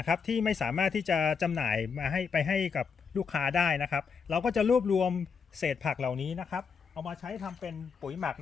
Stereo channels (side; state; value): right; quieter; 6.0 dB